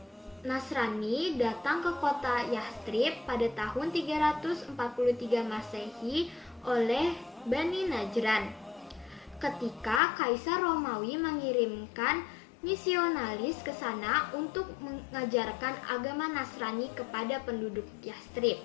Nasrani datang ke kota Yastrib pada tahun 343 Masehi oleh Bani Najran. Ketika Kaisar Romawi mengirimkan misionaris ke sana untuk mengajarkan agama Nasrani kepada penduduk Yastrib.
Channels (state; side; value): drops out; right; at 10.0 s